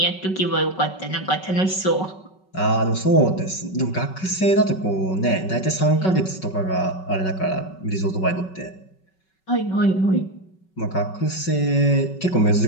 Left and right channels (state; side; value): late; right; 5.3 ms